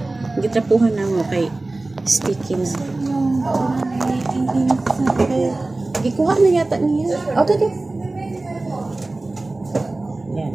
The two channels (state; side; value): quieter; left; 3.0 dB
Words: Gitrapuhan na mo kay sticky na. Gikuha na yata niya. Okay. Yan.